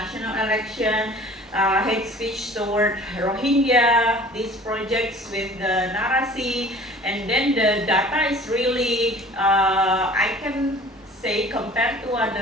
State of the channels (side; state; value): both; normal; correlation 0.47